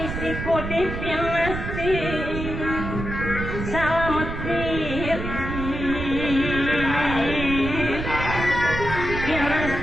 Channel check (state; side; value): noise; right; rumble, 5 dB below the sound